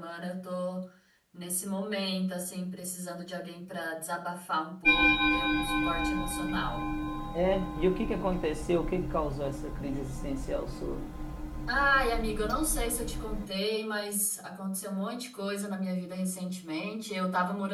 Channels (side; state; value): both; identical; correlation 1.00